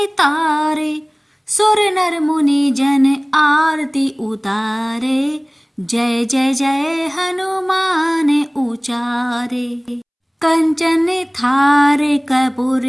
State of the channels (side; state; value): both; identical; correlation 1.00